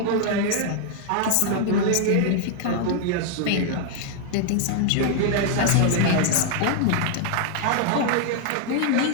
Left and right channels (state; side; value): different; both; correlation 0.00